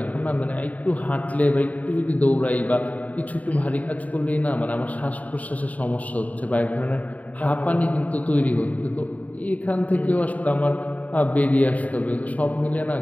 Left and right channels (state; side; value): late; right; 0.071 ms